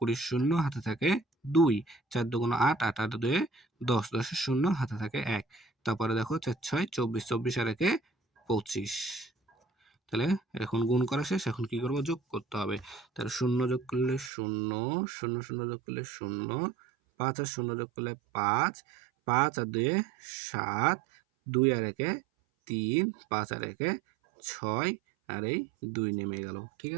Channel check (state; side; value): drops out; left; at 14.3 s